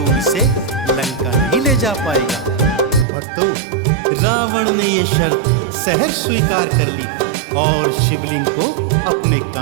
इसे लंका नहीं ले जा पाएगा। भक्तों, रावण ने ये शर्त सहर्ष स्वीकार कर ली और शिवलिंग को अपने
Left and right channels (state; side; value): drops out; left; at 3.1 s